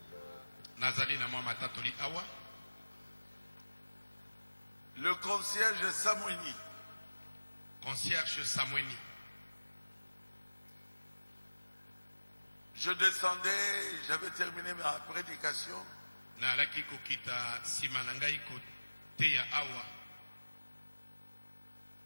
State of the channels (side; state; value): both; inverted; correlation -1.00